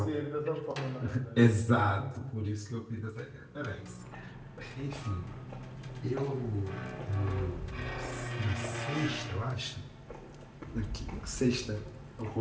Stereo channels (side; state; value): both; identical; correlation 1.00